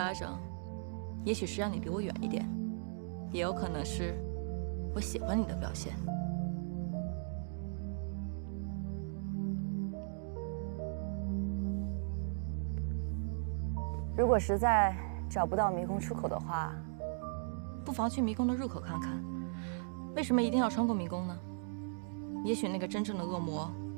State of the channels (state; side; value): silent; left; digital silence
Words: 掌，也许是让你离我远一点，也有可能是我喜欢你的表现。如果实在找不到迷宫出口的话，不妨去迷宫的入口看看。为什么一定要穿过迷宫呢？也许那个真正的恶魔